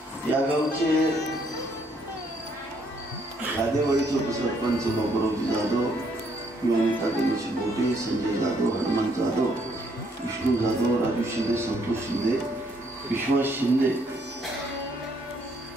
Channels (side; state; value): both; normal; correlation 0.69